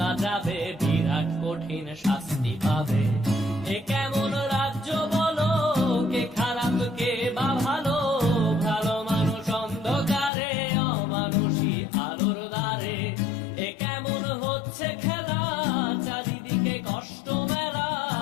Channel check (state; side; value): drops out; right; at 10.3 s